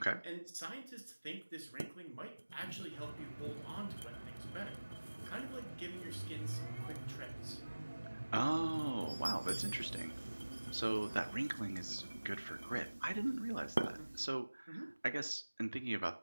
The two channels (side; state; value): both; inverted; correlation -1.00